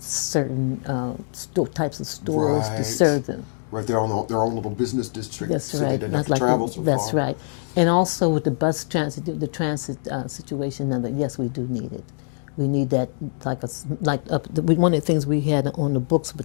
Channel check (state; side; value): silent; right; digital silence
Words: types of stores to serve them. Right, their own little business district, That's so right. they didn't have to travel so far. That's right. And also with the bus transit, the transit situation, yes, we do need it. We need that, one of the things we had on the books